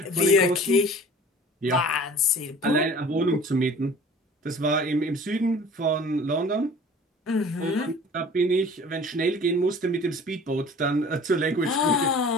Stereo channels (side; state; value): both; normal; correlation 0.46